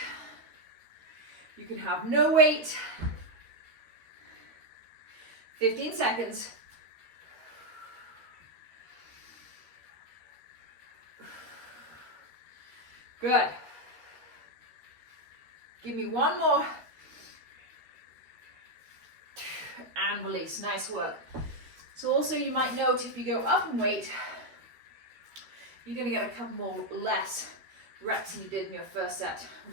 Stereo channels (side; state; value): left; late; 13 ms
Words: You can have no weight. 15 seconds. Good. Give me one more. And release. Nice work. So also you might note if you go up in weight, you're going to get a couple more less reps than you did in your first set,